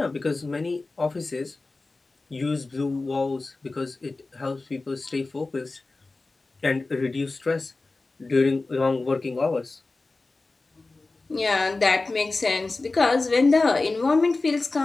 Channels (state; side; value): quieter; right; 3.4 dB